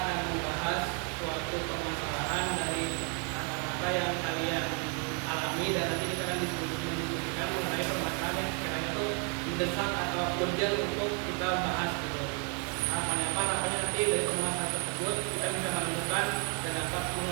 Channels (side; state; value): left; quieter; 37.4 dB